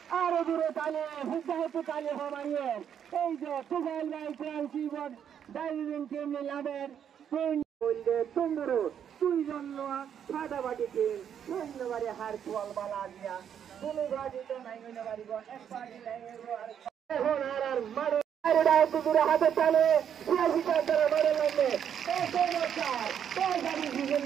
আরো দূরে তালে হুদ্দাহতে তালে হমাইয়ে এই যে টুগাইল ভাই ট্রান্সিবন ডাইভিং টিম লাভের বললে তুমরো দুইজন লোয়া ফাটাফাটি টিম ধন্যবাদে হার ফল বালা দিয়া কোনো গাড়িতে নাই হইনা পারিব এক পার্টি নাই হইব আর এখন আর মারো আরেডা দূরে হাতে তালে সিয়াসিটা করে মারে লাগে এই সমস্যার তো গাড়ি জীবন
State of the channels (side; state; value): left; quieter; 8.7 dB